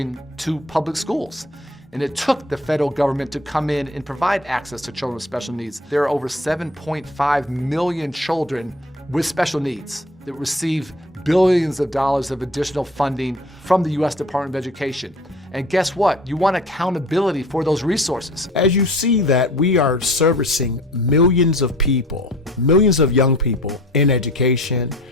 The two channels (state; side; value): normal; both; correlation 0.46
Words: to public schools. And it took the federal government to come in and provide access to children with special needs. There are over 7.5 million children with special needs that receive billions of dollars of additional funding from the U.S. Department of Education. And guess what? You want accountability for those resources. As you see that we are servicing millions of people, millions of young people in education,